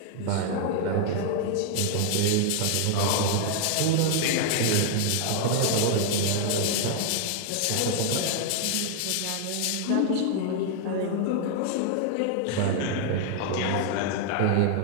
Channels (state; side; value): different; both; correlation 0.00